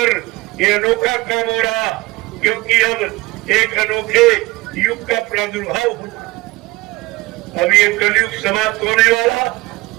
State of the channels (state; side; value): quieter; left; 21.0 dB